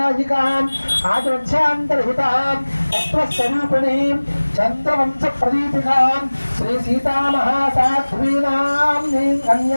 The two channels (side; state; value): both; inverted; correlation -1.00